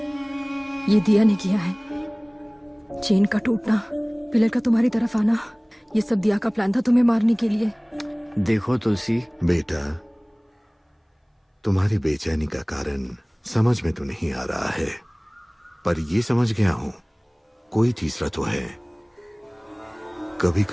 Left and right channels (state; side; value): identical; both; correlation 1.00